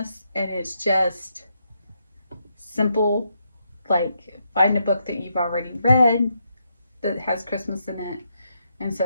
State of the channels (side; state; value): both; inverted; correlation -0.80